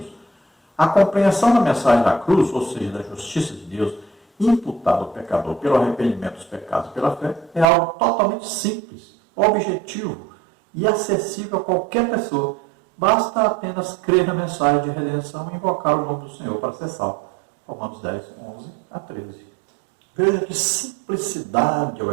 a compreensão da mensagem da cruz, ou seja, da justiça de Deus, imputada ao pecador pelo arrependimento dos pecados e pela fé, é algo totalmente simples, objetivo e acessível a qualquer pessoa. Basta apenas crer na mensagem de redenção e invocar o nome do Senhor para ser salvo. Romanos 10, 11 a 13. Veja que simplicidade é o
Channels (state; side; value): drops out; left; at 7.7 s